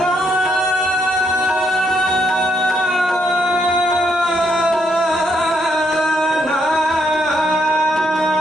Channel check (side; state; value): both; normal; correlation 0.75